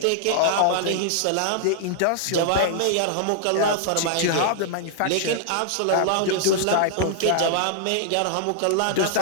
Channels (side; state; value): both; different; correlation -0.01